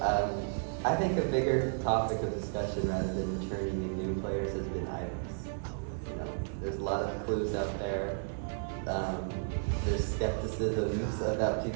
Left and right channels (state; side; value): silent; left; 56 dB below the other